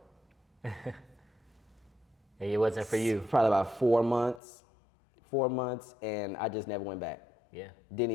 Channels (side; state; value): right; drops out; at 4.4 s